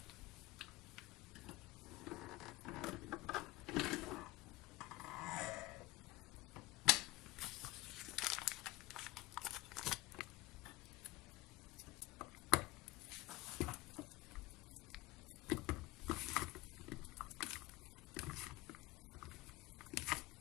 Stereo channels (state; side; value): quieter; right; 19.8 dB